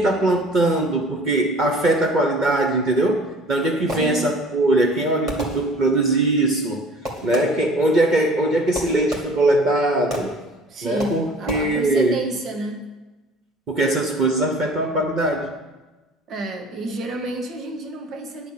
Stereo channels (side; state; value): both; normal; correlation 0.48